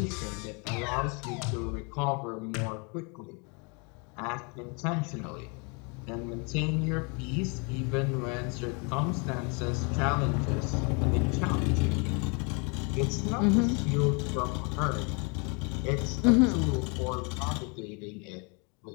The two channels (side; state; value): right; quieter; 33.3 dB